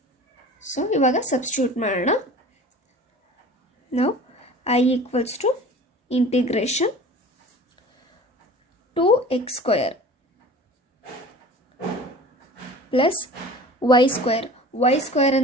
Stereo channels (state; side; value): normal; both; correlation 0.41